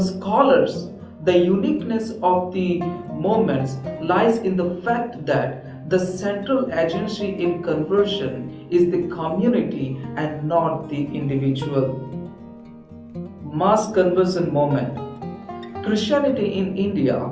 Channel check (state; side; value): identical; both; correlation 1.00